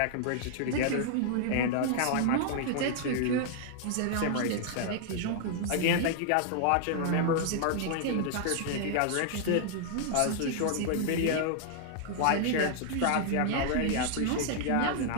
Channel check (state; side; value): different; both; correlation -0.01